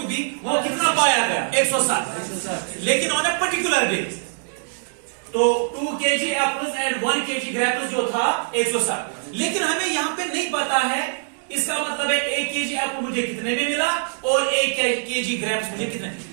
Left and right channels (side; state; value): left; silent; digital silence